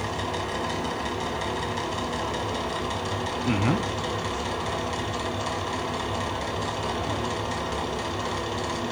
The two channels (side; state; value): both; identical; correlation 1.00